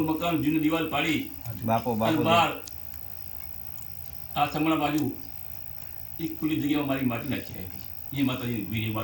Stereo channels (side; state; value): both; identical; correlation 1.00